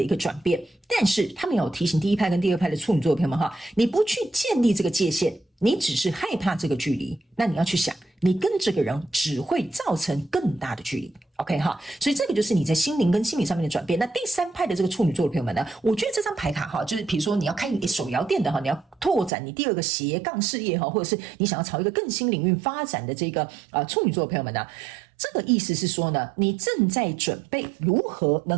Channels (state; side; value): drops out; left; at 19.3 s